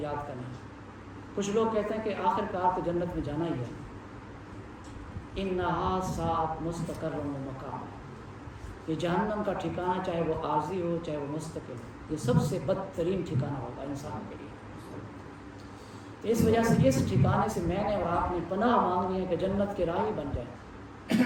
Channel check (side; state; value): both; identical; correlation 1.00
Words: کرنا ہے۔ کچھ لوگ کہتے ہیں کہ آخر کار تو جنت میں جانا ہی ہے، انہا ساعت مستقر و مقام، یہ جہنم کا ٹھکانہ چاہے وہ عارضی ہو چاہے وہ مستقل ہو، یہ سب سے بدترین ٹھکانہ ہوگا انسان کے لیے۔ تو اس وجہ سے اس ٹھکانے سے میں نے اور آپ نے پناہ مانگنی ہے کہ جنت کے راہی بن